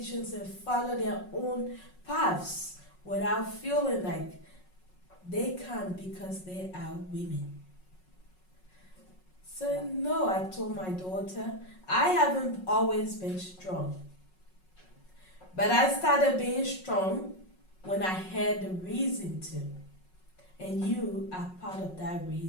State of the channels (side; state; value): right; late; 5.4 ms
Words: and follow their own paths without feeling like they can't because they are women. So no, I told my daughter, I haven't always been strong. But I started being strong when I had the reason to. And you are part of that